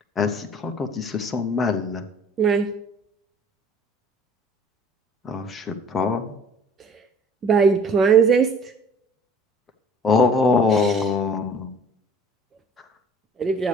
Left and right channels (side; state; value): both; normal; correlation 0.50